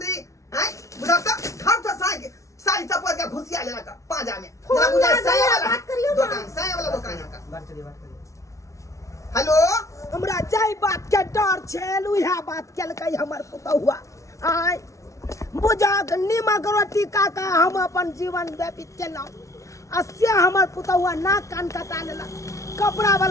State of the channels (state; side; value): late; right; 0.15 ms